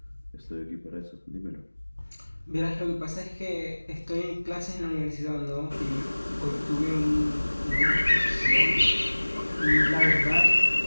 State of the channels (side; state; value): both; inverted; correlation -1.00